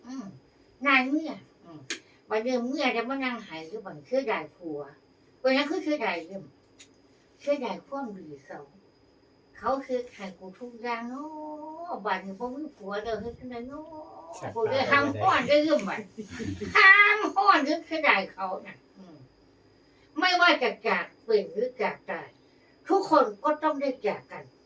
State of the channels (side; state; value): both; identical; correlation 1.00